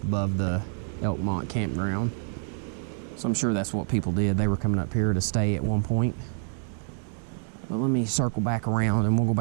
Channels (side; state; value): left; silent; 56 dB below the other